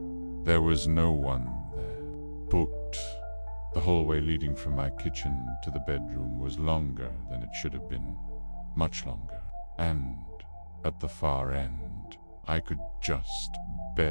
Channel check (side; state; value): both; inverted; correlation -1.00